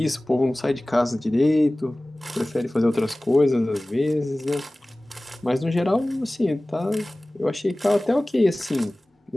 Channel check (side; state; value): both; normal; correlation 0.98